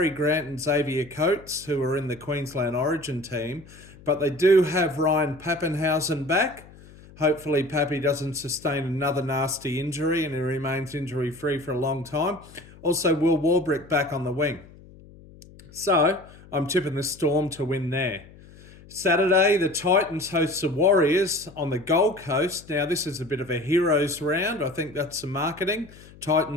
Grant and Xavier Coates, who are in the Queensland Origin team. But they do have Ryan Papenhuyzen back. Hopefully Pappy doesn't sustain another nasty injury and he remains injury-free for a long time. Also, Will Warbrick back on the wing. So, I'm tipping the Storm to win there. Saturday, the Titans host the Warriors on the Gold Coast. Now, this is a bit of a heroes round. I think that's some marketing.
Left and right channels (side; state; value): left; noise; hum, 22 dB below the sound